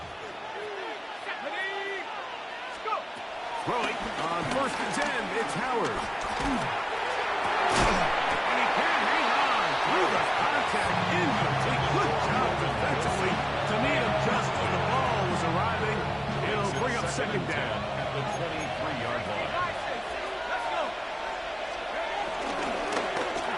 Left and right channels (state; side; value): identical; both; correlation 1.00